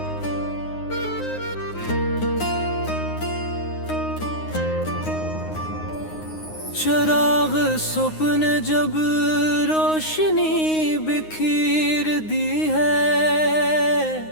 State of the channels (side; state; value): right; late; 9.6 ms